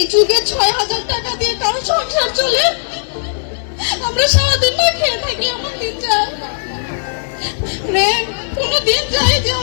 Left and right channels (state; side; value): silent; right; digital silence